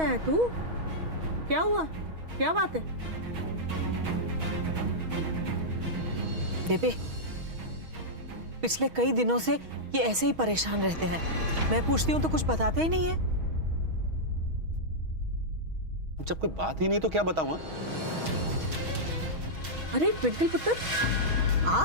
है तू? क्या हुआ? क्या बात है? बेबे, पिछले कई दिनों से ये ऐसे ही परेशान रहते हैं। मैं पूछती हूँ तो कुछ बताते ही नहीं है। जब कोई बात ही नहीं तो क्या बताऊं? अरे ट्विंकल पुत्र, आ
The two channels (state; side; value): late; left; 6.3 ms